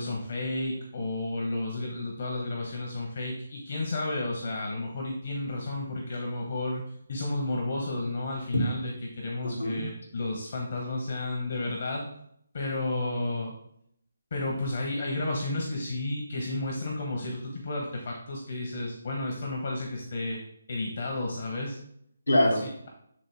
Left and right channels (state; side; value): inverted; both; correlation -0.82